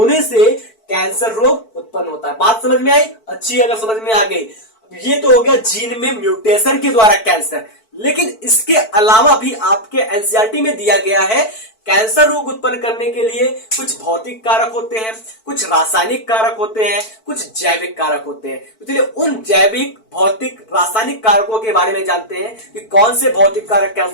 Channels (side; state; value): right; late; 4.5 ms